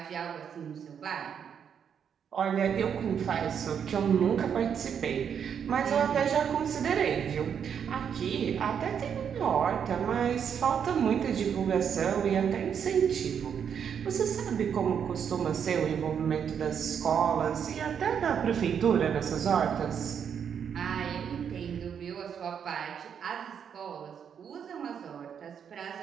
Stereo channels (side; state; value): left; quieter; 7.8 dB